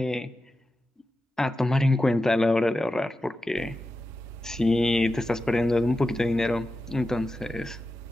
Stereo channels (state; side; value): normal; both; correlation 0.92